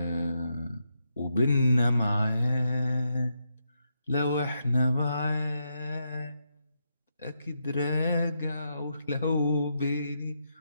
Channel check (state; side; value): inverted; both; correlation -0.82